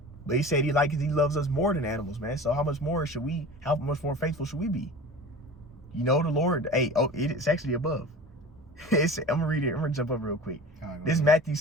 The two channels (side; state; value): both; normal; correlation 0.37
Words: But he said he loves us more than animals, man. So how much more faithful should we be? You know, the Lord, it's actually above. I'm going to read it. I'm going to jump up real quick. This is Matthew